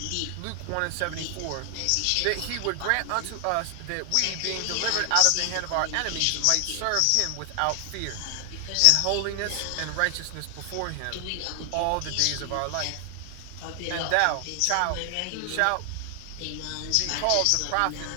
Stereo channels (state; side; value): different; both; correlation 0.00